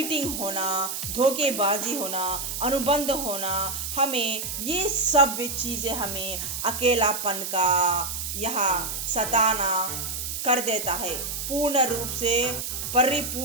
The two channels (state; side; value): noise; right; hiss, 4 dB below the sound